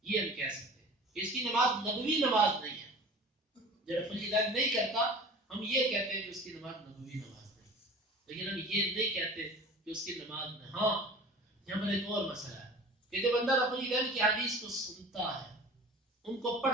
یہ ہم کہہ سکتے ہیں اس کی نماز نبوی نماز نہیں ہے. جو رفع الیدین نہیں کرتا ہم یہ کہتے ہیں کہ اس کی نماز نبوی نماز نہیں, لیکن ہم یہ نہیں کہتے کہ اس کی نماز نہیں. ہاں یہاں پر ایک اور مسئلہ ہے کہ جب بندہ رفع الیدین کی حدیث کو سنتا ہے, ان کو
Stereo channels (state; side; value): normal; both; correlation 0.41